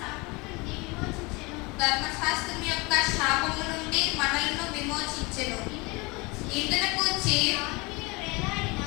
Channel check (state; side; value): quieter; right; 26.1 dB